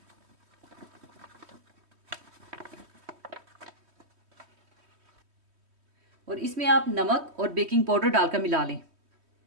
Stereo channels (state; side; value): late; left; 3.1 ms